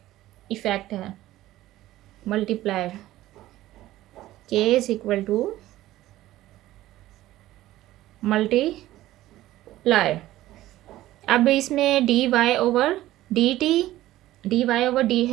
इफेक्ट है। Multiplier K is equal to multiplier. अब इसमें D Y over D T, D Y over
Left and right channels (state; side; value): quieter; left; 15.4 dB